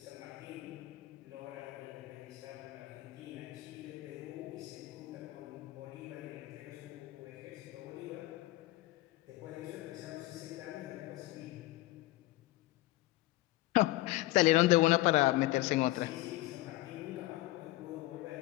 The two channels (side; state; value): right; quieter; 18.0 dB